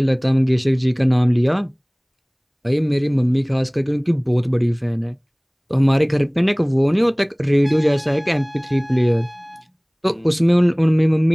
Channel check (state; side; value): identical; both; correlation 1.00